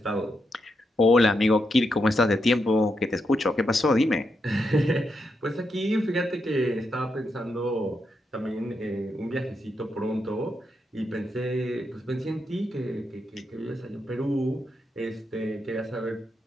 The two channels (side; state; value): both; normal; correlation 0.83